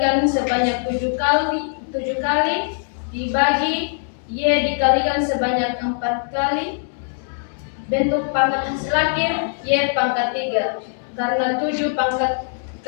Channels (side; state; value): right; silent; digital silence